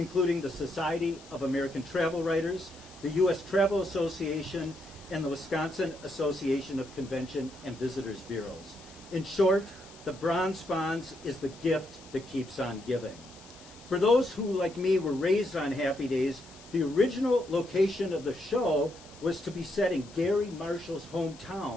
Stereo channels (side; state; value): left; noise; hiss, 21 dB below the sound